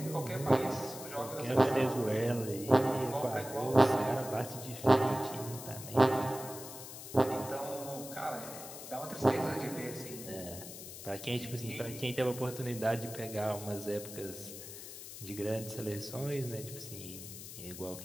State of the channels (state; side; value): noise; left; hiss, 12 dB below the sound